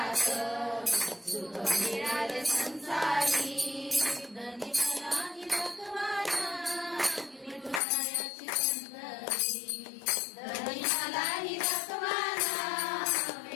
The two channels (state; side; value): drops out; right; at 7.8 s